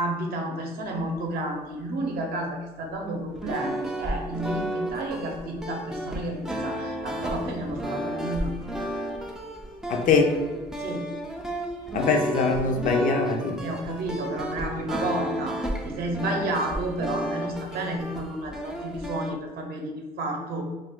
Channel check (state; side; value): normal; both; correlation 0.45